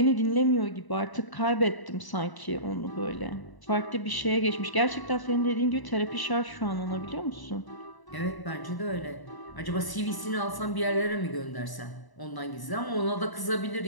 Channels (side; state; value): right; late; 1.0 ms